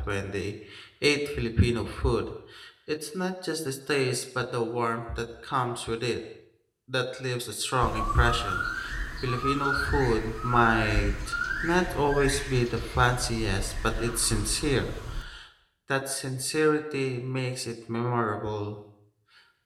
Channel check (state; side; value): identical; both; correlation 1.00